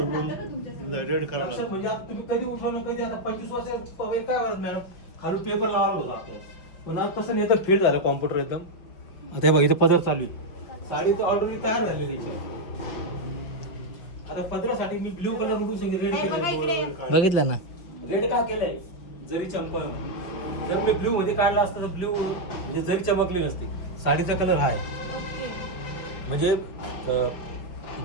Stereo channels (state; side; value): late; right; 5.8 ms